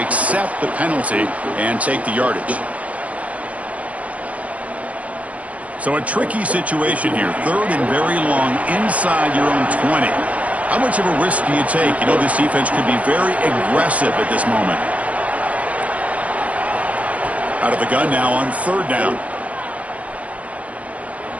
accept the penalty and take the yardage. So a tricky situation here. Third and very long inside your own 20. How much of a risk do you take? You know, this defense could be very aggressive at this moment. Out of the gun now on third down.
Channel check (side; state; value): left; late; 0.067 ms